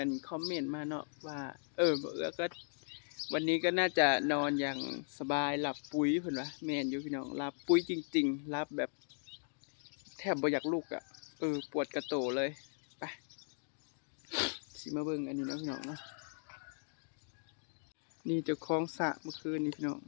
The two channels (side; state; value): right; silent; digital silence